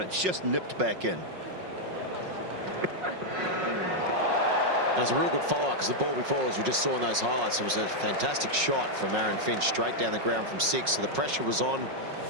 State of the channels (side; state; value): left; late; 5.5 ms